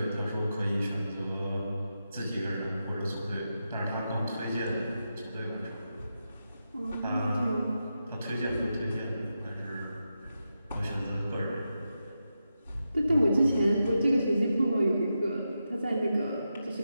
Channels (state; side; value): inverted; both; correlation -0.88